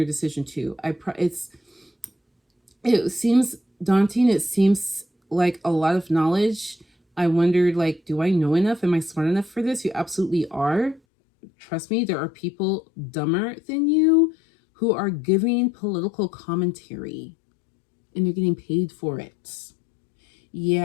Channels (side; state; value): right; drops out; at 11.0 s